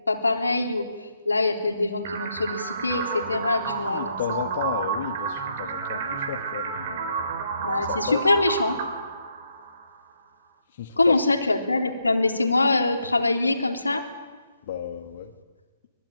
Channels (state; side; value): inverted; both; correlation -0.77